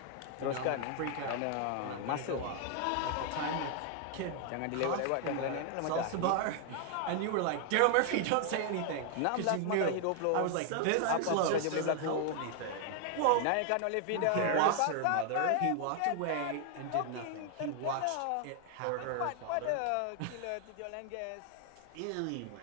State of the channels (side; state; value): both; different; correlation 0.00